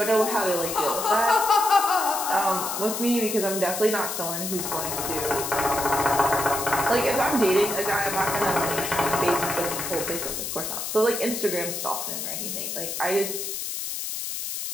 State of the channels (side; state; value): left; noise; hiss, 4 dB below the sound